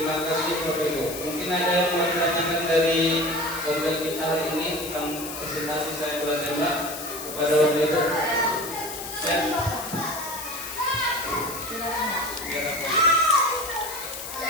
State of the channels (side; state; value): left; noise; hiss, 9 dB below the sound